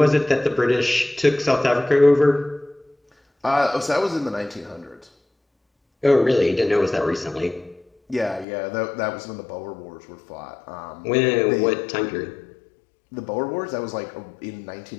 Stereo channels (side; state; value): right; drops out; at 8.5 s